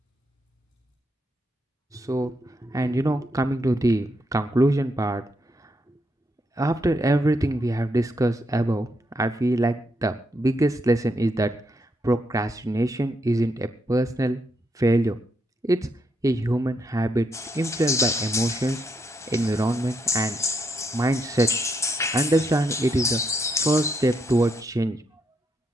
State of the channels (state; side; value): normal; both; correlation 0.78